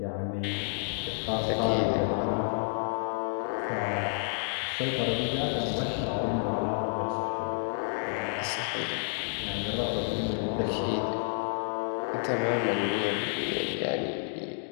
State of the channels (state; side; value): silent; right; digital silence